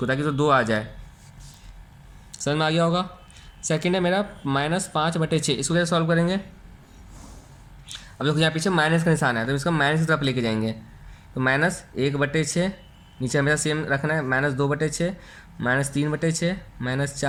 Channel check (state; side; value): identical; both; correlation 1.00